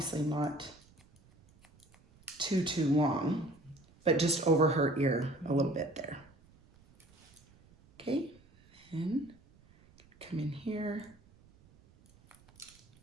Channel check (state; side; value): noise; right; rumble, 28 dB below the sound